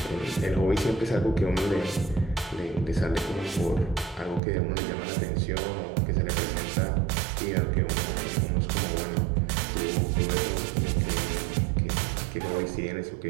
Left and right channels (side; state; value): left; drops out; at 4.4 s